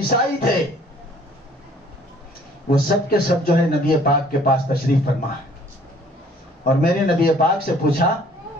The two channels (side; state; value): both; normal; correlation 0.57